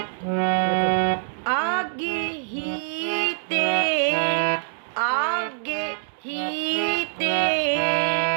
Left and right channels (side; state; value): left; silent; 62 dB below the other